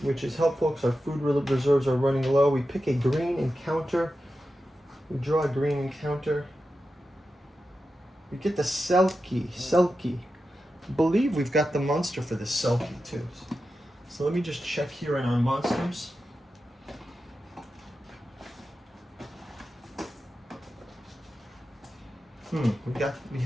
which is helpful because our food reserves are running low. We pick a green encounter. We draw a green encounter. We get the Selkie. I believe we've got the monster for this Selkie too. So let me just check here in our monsters. We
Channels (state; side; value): normal; both; correlation 0.91